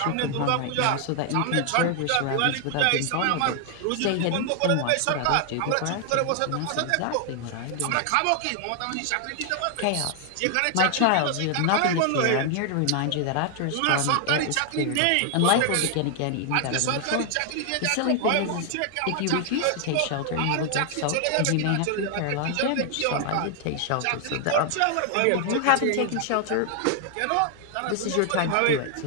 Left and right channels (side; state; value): both; different; correlation 0.00